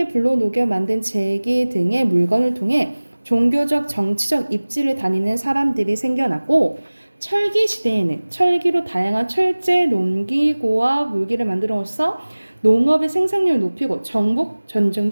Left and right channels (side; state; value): both; inverted; correlation -1.00